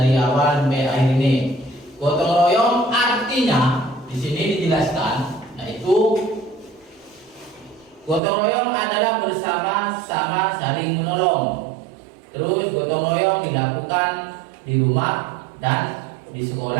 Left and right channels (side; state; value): left; drops out; at 8.2 s